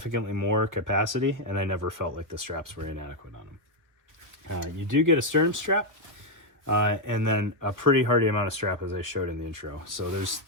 more capacity, and I never felt like the straps were inadequate on them. You do get a sternum strap, and then a pretty hardy amount of strap, as I showed in the intro. So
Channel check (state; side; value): late; left; 1.5 ms